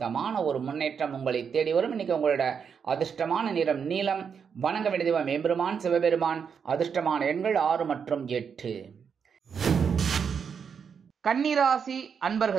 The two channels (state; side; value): quieter; left; 6.7 dB